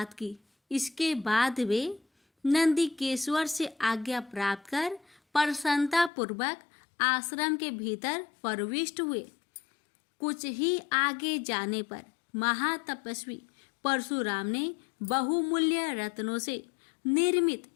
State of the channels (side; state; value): right; drops out; at 6.1 s